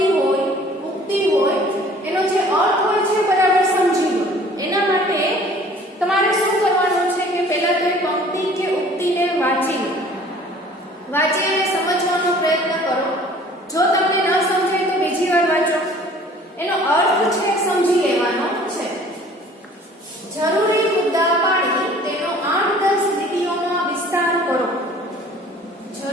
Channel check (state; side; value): normal; both; correlation 0.51